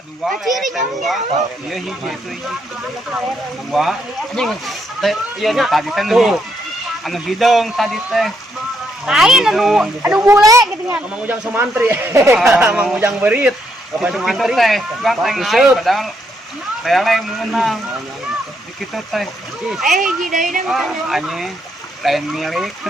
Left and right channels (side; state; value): both; normal; correlation 0.76